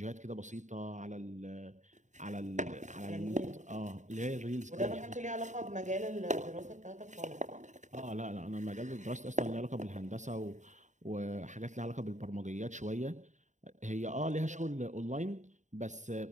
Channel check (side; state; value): left; late; 0.35 ms